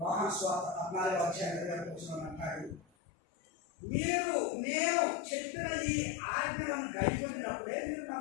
యోహాను సువార్త 14:20 అంటాడు, మీరు నేను చెప్పిన ఈ ఆజ్ఞలను గైకొనినప్పుడే మీరు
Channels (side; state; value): right; drops out; at 2.8 s